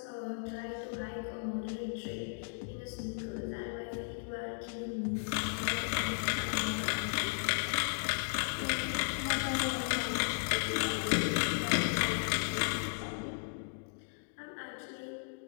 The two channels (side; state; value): right; silent; digital silence